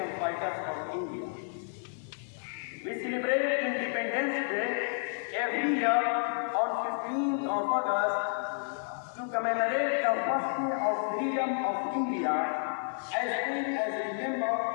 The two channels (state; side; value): silent; right; 55 dB below the other